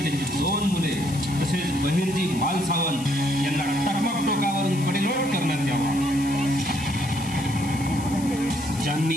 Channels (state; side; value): noise; left; hiss, 14 dB below the sound